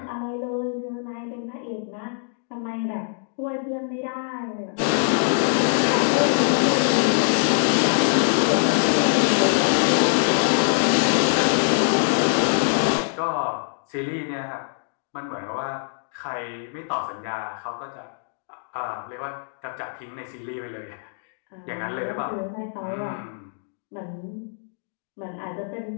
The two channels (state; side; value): silent; right; digital silence